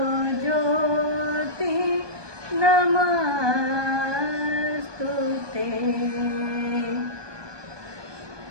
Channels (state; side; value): late; left; 1.2 ms